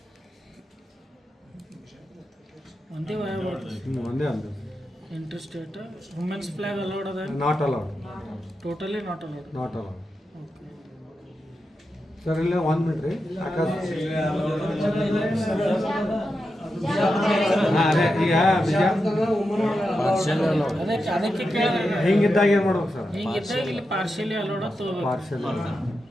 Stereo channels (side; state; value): both; normal; correlation 0.88